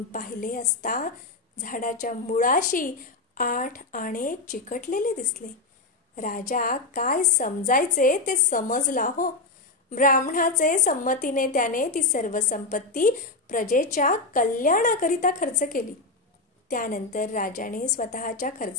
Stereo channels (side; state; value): right; quieter; 3.4 dB